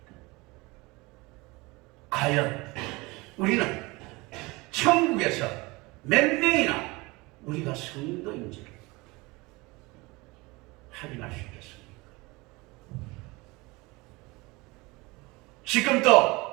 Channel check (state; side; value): quieter; left; 23.7 dB